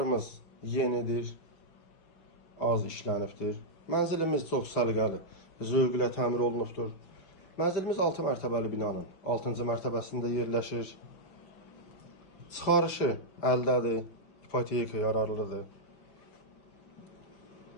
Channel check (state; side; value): late; right; 5.3 ms